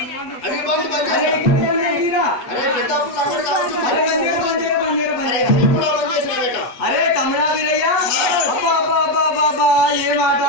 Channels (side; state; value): right; late; 8.0 ms